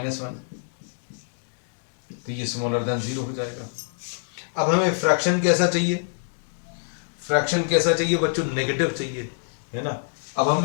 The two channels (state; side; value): silent; right; digital silence